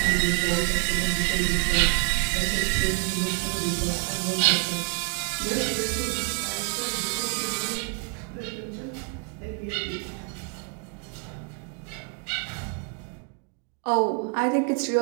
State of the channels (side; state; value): left; quieter; 36.4 dB